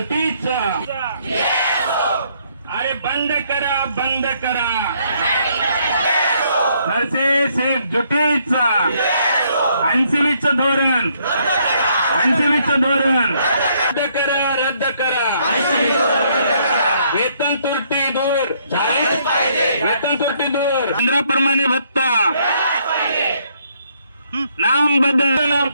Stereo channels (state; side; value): inverted; both; correlation -0.69